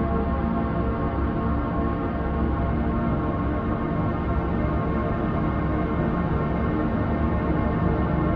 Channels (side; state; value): both; identical; correlation 1.00